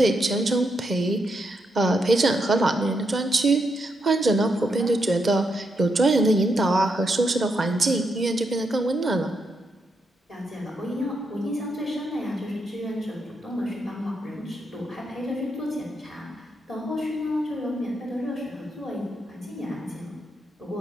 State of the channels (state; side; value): normal; both; correlation 0.81